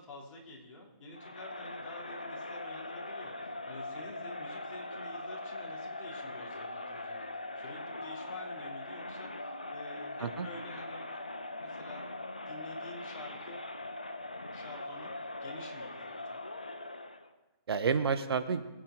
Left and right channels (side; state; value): both; inverted; correlation -0.58